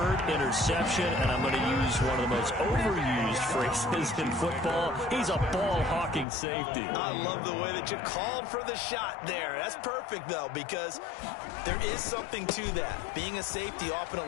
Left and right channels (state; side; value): drops out; right; at 6.2 s